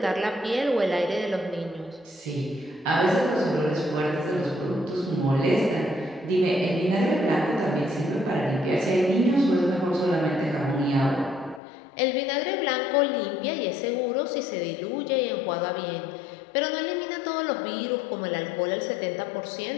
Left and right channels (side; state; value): right; drops out; at 11.6 s